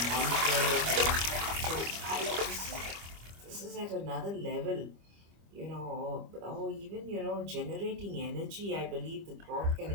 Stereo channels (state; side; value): late; left; 25 ms